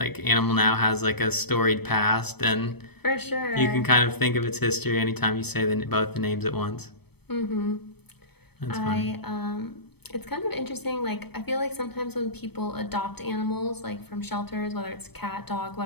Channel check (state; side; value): late; right; 0.97 ms